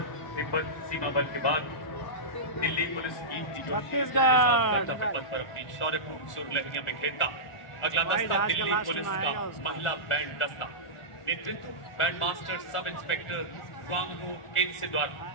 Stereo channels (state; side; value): late; right; 1.4 ms